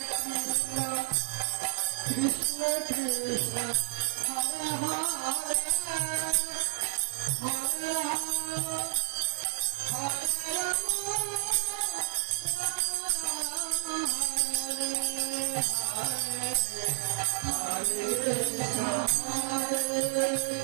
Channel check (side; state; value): left; silent; digital silence